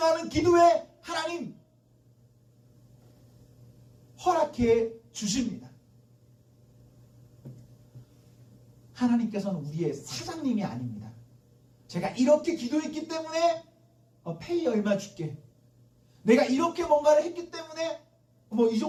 기도에 하나님 허락해 주십니다. 하나님께서는 우리의 사장님이 아닙니다. 제가 이렇게 기도했기 때문에 페이 얼마 줄게, 내가 이렇게 뭔가를 했기 때문에 이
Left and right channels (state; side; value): identical; both; correlation 1.00